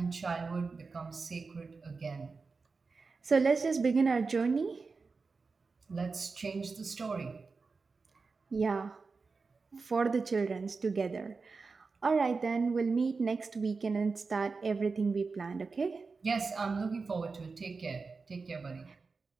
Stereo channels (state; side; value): quieter; left; 4.4 dB